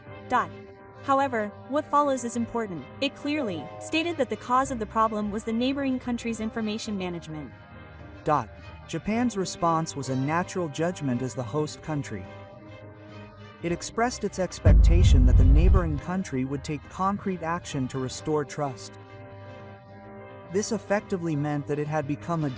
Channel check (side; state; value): both; identical; correlation 1.00